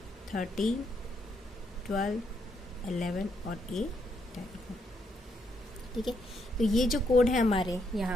13, 12, 11 और A 10 को, ठीक है। तो ये जो कोड है हमारे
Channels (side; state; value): both; normal; correlation 0.76